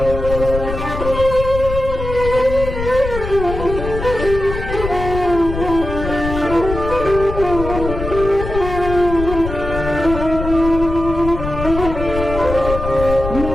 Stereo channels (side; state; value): left; noise; rumble, 6 dB below the sound